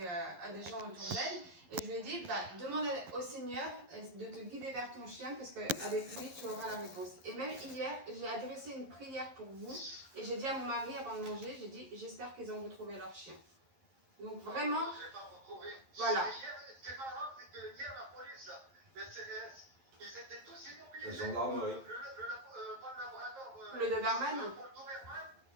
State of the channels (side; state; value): left; late; 11 ms